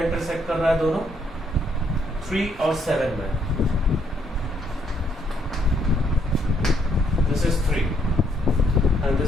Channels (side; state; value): both; normal; correlation 0.72